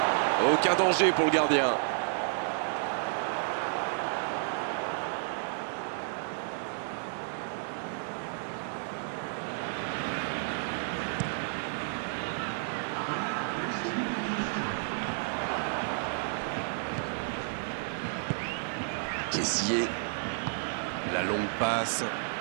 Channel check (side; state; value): left; silent; digital silence